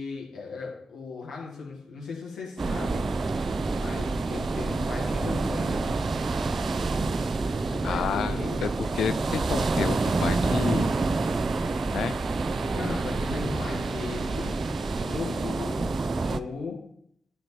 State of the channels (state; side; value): normal; both; correlation 0.88